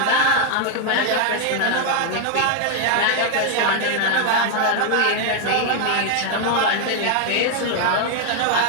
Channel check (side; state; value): both; different; correlation 0.00